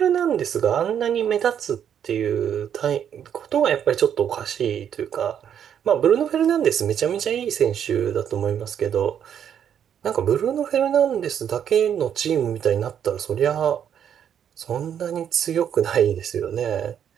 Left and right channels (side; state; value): left; quieter; 8.9 dB